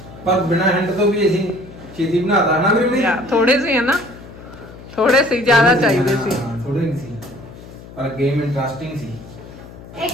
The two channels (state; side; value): noise; left; hum, 17 dB below the sound